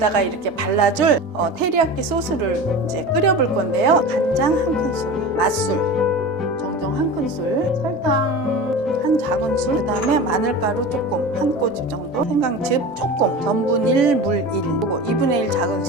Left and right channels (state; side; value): normal; both; correlation 0.32